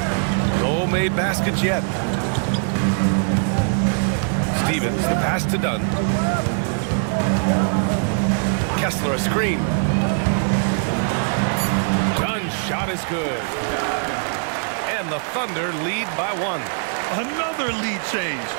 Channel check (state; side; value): silent; left; digital silence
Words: No made baskets yet. Stevens, the pass to Dunn. Kessler, a screen. Dunn's shot is good. And the Thunder lead by 1. Another lead change.